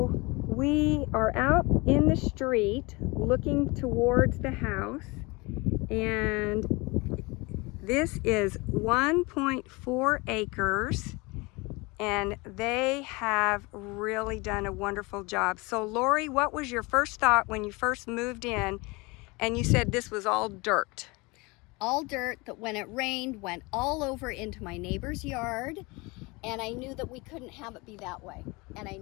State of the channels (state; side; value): quieter; right; 25.4 dB